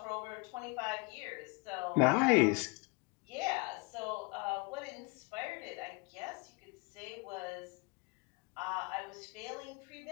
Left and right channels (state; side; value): quieter; right; 28.9 dB